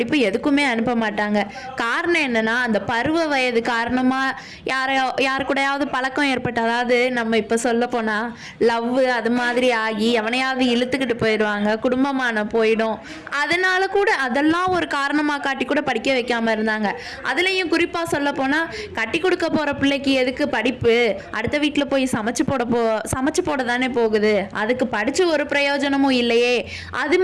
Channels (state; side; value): identical; both; correlation 1.00